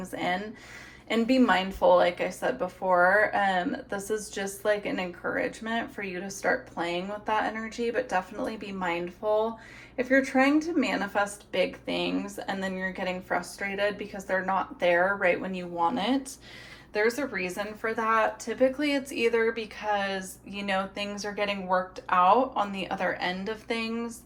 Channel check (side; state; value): both; identical; correlation 1.00